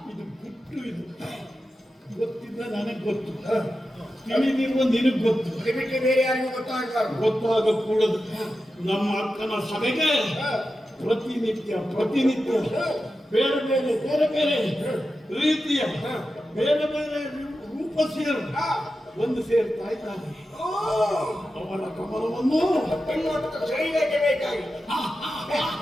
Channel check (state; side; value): normal; both; correlation 0.91